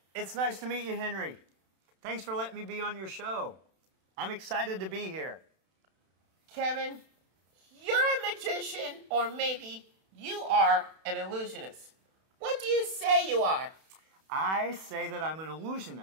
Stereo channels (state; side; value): late; left; 31 ms